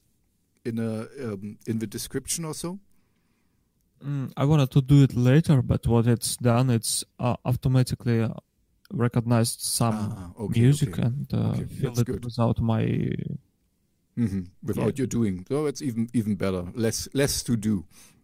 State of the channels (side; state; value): both; identical; correlation 1.00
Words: the description also? I wanted to do it later, but what it's done, it's automatically recognized some music and filled it good. without my without you doing. So it's even better. Less to do.